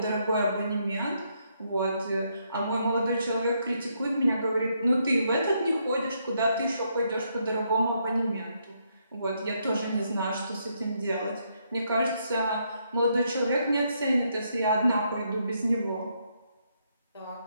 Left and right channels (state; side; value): inverted; both; correlation -0.76